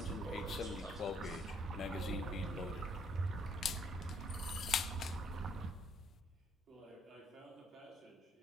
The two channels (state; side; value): normal; both; correlation 0.66